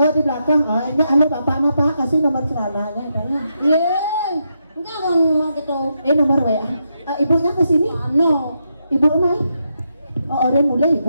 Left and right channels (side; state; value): both; inverted; correlation -0.82